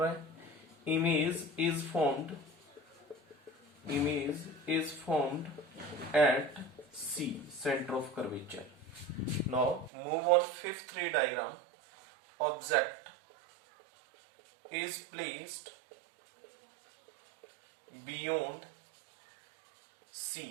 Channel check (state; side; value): drops out; left; at 9.9 s